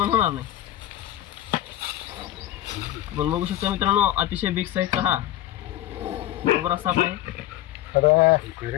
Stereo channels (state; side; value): quieter; right; 13.9 dB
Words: होणार नाही. आपण बघू शकता मित्रांनो, अतिशय बिग साईजचा हा कोब्रा साप आहे.